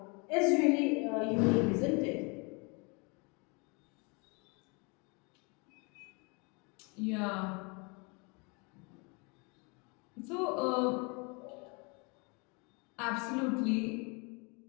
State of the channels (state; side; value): quieter; right; 31.4 dB